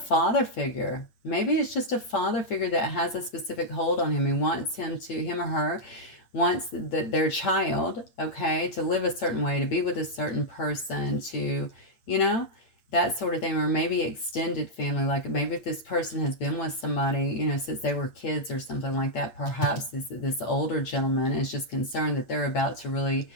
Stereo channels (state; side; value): late; right; 8.5 ms